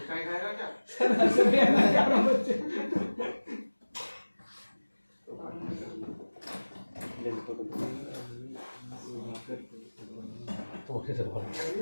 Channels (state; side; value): inverted; both; correlation -1.00